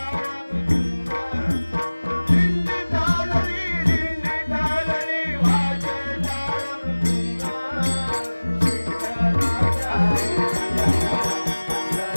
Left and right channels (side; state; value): both; inverted; correlation -1.00